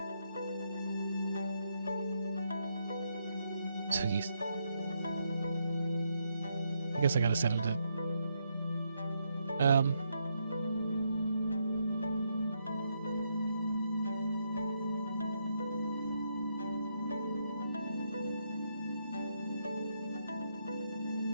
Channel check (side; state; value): both; inverted; correlation -0.78